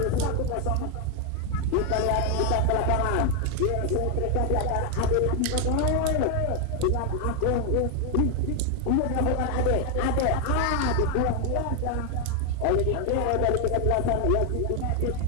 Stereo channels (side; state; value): both; different; correlation 0.01